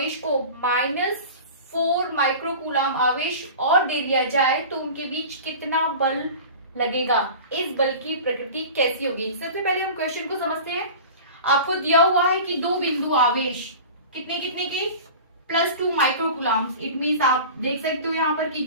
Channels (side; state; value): both; inverted; correlation -0.36